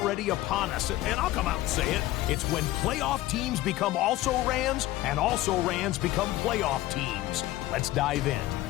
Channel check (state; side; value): quieter; right; 16.3 dB